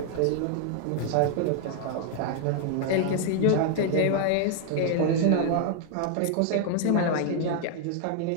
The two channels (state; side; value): different; both; correlation 0.00